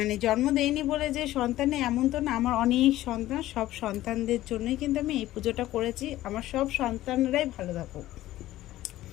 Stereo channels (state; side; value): quieter; right; 15.1 dB